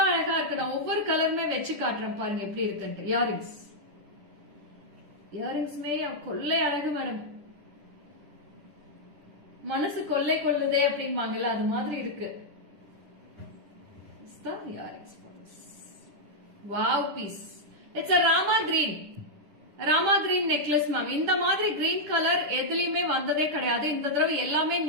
அழகா இருக்கு. நான் ஒவ்வொரு கலருமே வச்சு காட்டுறேன் பாருங்க எப்படி இருக்குன்ட்டு. இயரிங்ஸ்மே கொள்ளை அழகு மேடம். மனசு கொள்ளை கொள்ளுதே அப்படிம்பாங்கல்ல அது மாதிரி இருக்கு. Earrings wow piece. It's a Rama green. Rama green necklace ma'am. இந்த மாதிரி கிரீன் கலர் எதுலயுமே வந்ததே கிடையாது. இந்த தடவை எல்லாமே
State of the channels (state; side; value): late; left; 10 ms